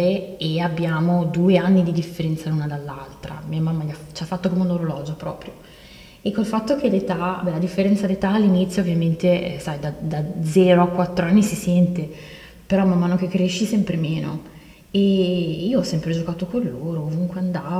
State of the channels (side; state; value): both; identical; correlation 1.00